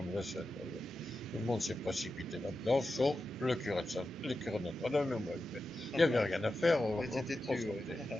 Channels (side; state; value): both; normal; correlation 0.91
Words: de vaisselle. Tout le monde s'est précipité là-dedans, sauf le curé de Notre-Dame et moi. Il n'y avait rien à faire.